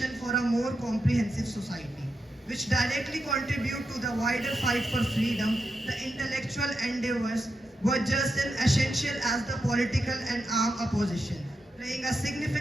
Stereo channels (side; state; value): both; normal; correlation 0.87